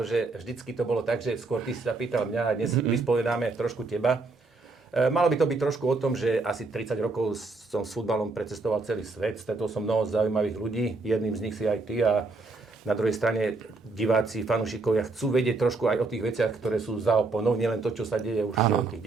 vždycky to bolo tak, že skôr ty si sa pýtal mňa a dnes vyspovedáme trošku teba. Malo by to byť trošku o tom, že asi 30 rokov som s futbalom precestoval celý svet, stretol som mnoho zaujímavých ľudí, jedným z nich si aj ty a na druhej strane diváci, fanúšikovia chcú vedieť trošku aj o tých veciach, ktoré sú za oponou, nielen to, čo sa deje už tých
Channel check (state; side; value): quieter; left; 3.6 dB